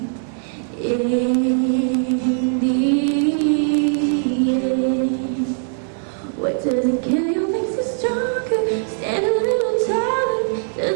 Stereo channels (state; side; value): silent; left; 65 dB below the other